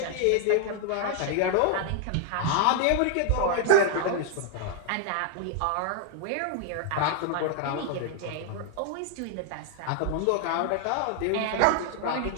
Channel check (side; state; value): both; different; correlation 0.00